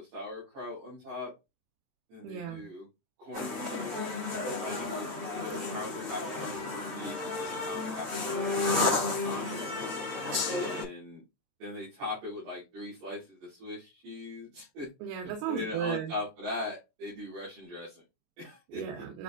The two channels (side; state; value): left; late; 23 ms